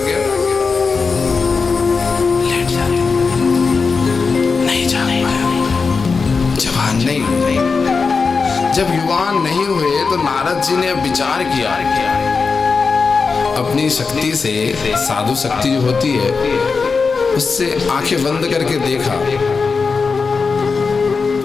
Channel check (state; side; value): quieter; right; 4.8 dB